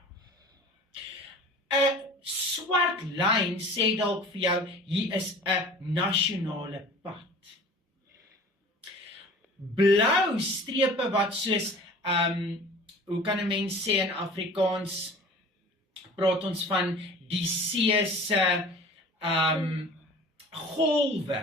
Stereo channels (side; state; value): both; normal; correlation 0.43